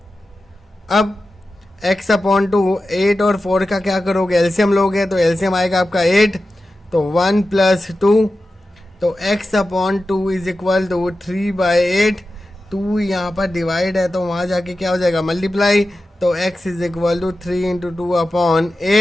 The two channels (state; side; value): normal; both; correlation 0.93